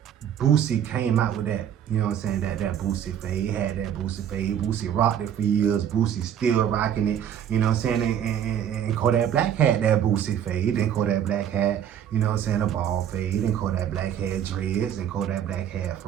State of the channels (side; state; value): left; quieter; 9.5 dB